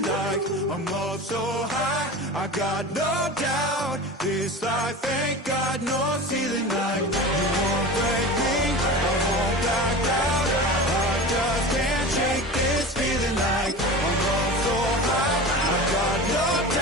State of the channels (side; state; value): both; normal; correlation 0.32